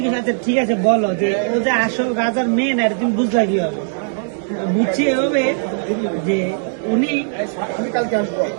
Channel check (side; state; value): left; silent; digital silence